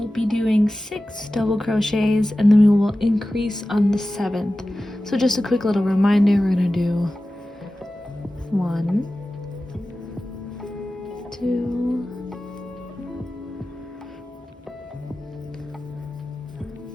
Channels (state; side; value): normal; both; correlation 0.95